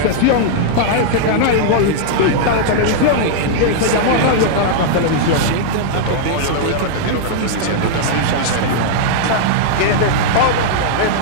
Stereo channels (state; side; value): different; both; correlation -0.01